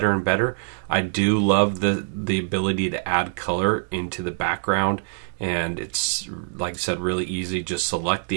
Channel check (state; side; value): silent; left; digital silence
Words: and better. I do love the ability to add color into the background, and it's, like I said, really easy. Just select